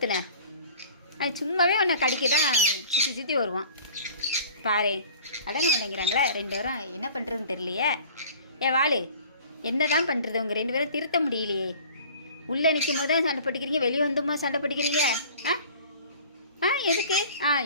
அவன் சும்மாவே அவனை கடிக்க தான் சுற்றி சுற்றி வருவான். பாரு, அடங்க மாட்டேங்கிறாங்களே ரெண்டு பேரும். என்ன பண்ணுறதுன்னு தெரியலையே. வாளு, என்ன தான் பண்ணுறது? உங்கள் ரெண்டு பேரும் திருத்த முடியலையே. உள்ளே நிற்கும் போது தான் சண்டை போட்டுக்கிறீங்க, வெளியே வந்துமா சண்டை போட்டுக்கிறீங்க? ஆ ஆ எதுக்கு?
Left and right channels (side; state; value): both; inverted; correlation -0.46